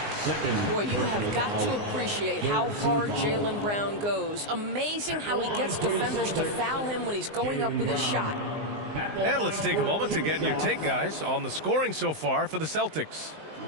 Boy, you have got to appreciate how hard Jaylen Brown goes. Amazing how he gets defenders to foul him when he's going up with his shot. And let's take a moment to get your take, guys, on the scoring so far for the Celtics.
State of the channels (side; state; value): left; late; 19 ms